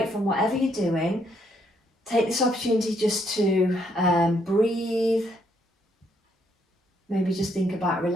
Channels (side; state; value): both; normal; correlation 0.72